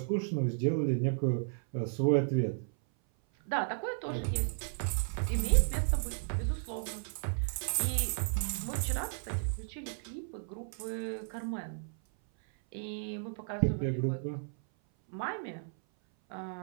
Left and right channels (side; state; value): left; silent; 55 dB below the other